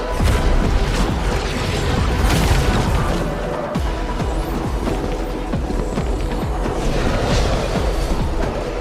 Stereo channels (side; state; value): both; identical; correlation 1.00